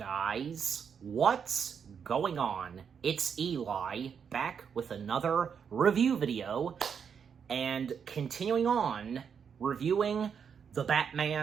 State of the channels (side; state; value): left; quieter; 7.0 dB